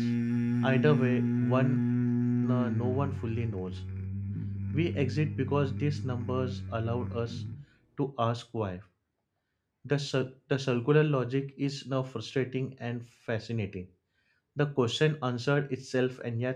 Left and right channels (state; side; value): identical; both; correlation 1.00